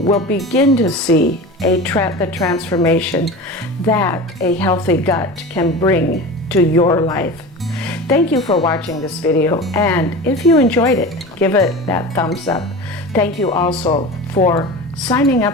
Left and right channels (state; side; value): normal; both; correlation 0.32